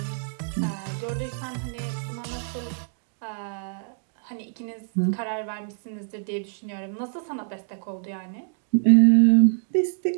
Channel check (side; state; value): left; silent; digital silence